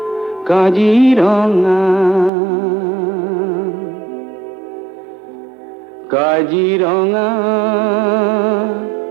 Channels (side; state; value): left; drops out; at 2.3 s